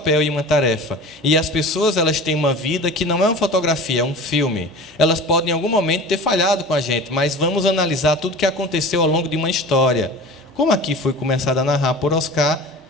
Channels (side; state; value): both; normal; correlation 0.36